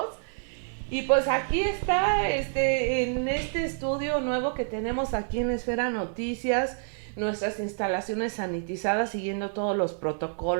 Y pues aquí está, en este estudio nuevo que tenemos aquí en Esfera Noticias, nuestras instalaciones sanitizadas, siguiendo todos los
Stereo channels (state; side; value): silent; left; digital silence